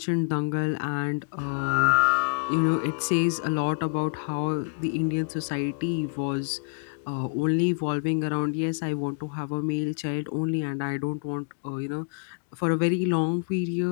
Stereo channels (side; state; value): right; silent; digital silence